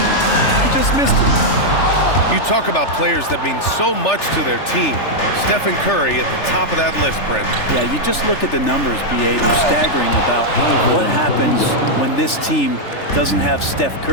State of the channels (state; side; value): late; right; 3.4 ms